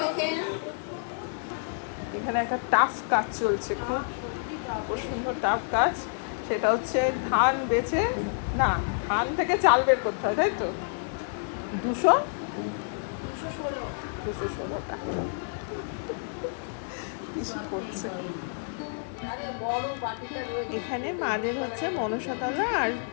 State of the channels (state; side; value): silent; right; 59 dB below the other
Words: এখানে একটা টাফ কাজ চলছে, খুব সুন্দর টাফ কাজ। সেটা হচ্ছে ধান বেচে, না, ধান থেকে চাল বের করতে হয়, তাই তো। 216 টাকা করছে। এখানে মাদের হচ্ছে মনসাতলা আর